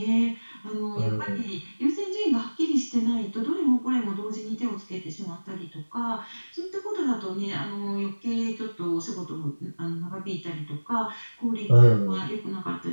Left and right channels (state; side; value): inverted; both; correlation -1.00